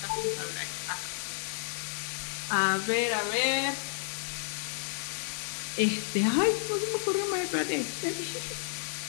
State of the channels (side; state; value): right; silent; digital silence